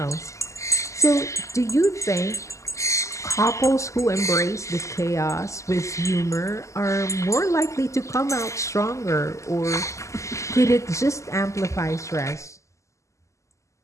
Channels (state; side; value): late; right; 0.15 ms